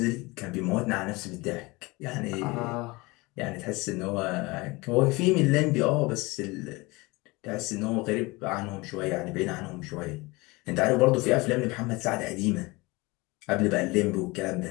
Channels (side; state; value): right; quieter; 23.8 dB